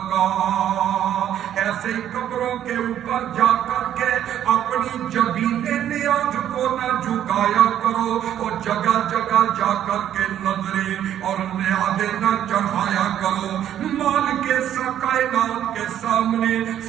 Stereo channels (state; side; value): quieter; left; 10.7 dB